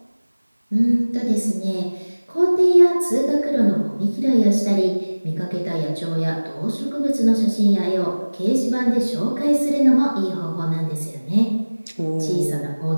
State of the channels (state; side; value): inverted; both; correlation -1.00